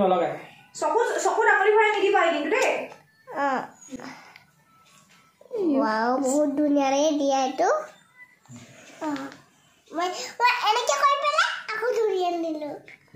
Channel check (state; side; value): identical; both; correlation 1.00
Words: নলগায় সকু ডাঙৰি ভৰাই নিদি পাই কিন্তু দে ওয়াও বহুত দুনিয়াৰে দিয়া এটো মই এনেকে কৈ পেলা আকৌ ধৰিয়ান দিলো